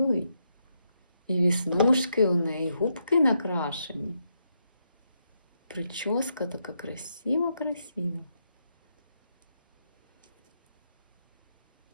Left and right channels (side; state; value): both; inverted; correlation -0.80